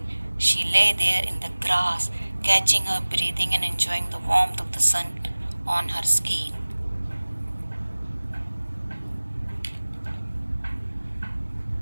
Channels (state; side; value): inverted; both; correlation -1.00